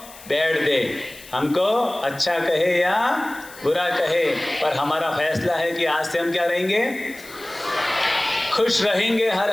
बैड दे, हमको अच्छा कहे या बुरा कहे, पर हमारा फैसला है कि आज से हम क्या रहेंगे? खुश रहेंगे हर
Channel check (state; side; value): noise; left; hiss, 19 dB below the sound